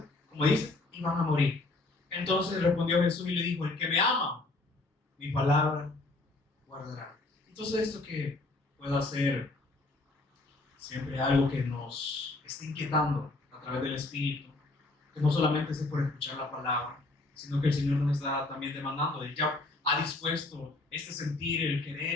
como dice, iban a morir. Entonces respondió Jesús y le dijo: el que me ama, mi palabra guardará. Entonces, esto que pueda ser siempre algo que nos esté inquietando a través del Espíritu, que no solamente es por escuchar la palabra, sino que el Señor nos está también demandando. Él ya ha dispuesto sentir, el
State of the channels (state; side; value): quieter; right; 3.1 dB